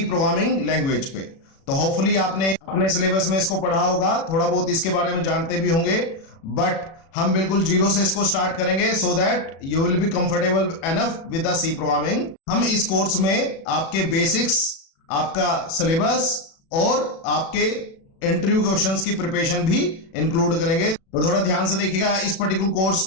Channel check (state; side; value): late; right; 36 ms